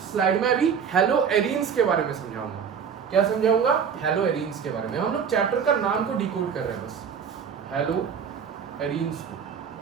स्लाइड में अभी हेलो एरीन्स के बारे में समझाऊंगा। क्या समझाऊंगा, हेलो एरीन्स के बारे में। हम लोग चैप्टर का नाम को डिकोड कर रहे हैं बस, हेलो एरीन्स को।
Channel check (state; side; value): quieter; left; 7.0 dB